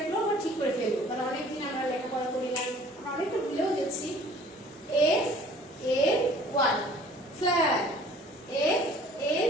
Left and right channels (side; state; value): both; normal; correlation 0.51